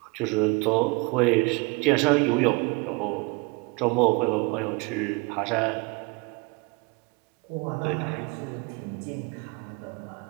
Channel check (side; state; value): left; quieter; 27.3 dB